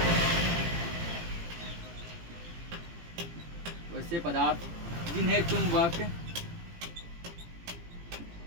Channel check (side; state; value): left; late; 18 ms